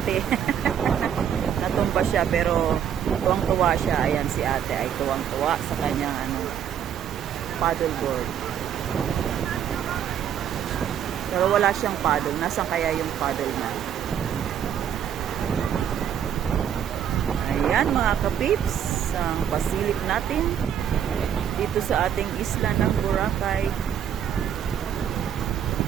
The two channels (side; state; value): left; quieter; 9.2 dB